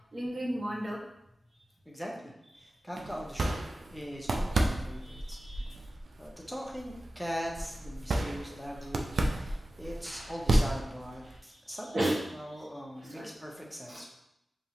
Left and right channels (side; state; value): both; normal; correlation 0.95